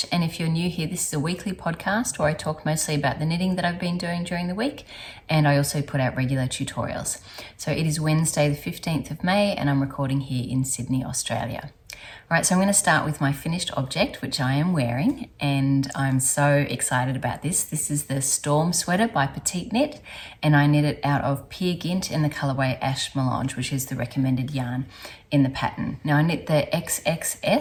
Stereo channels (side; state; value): both; identical; correlation 1.00